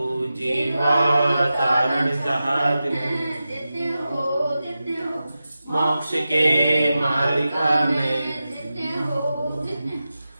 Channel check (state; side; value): inverted; both; correlation -0.93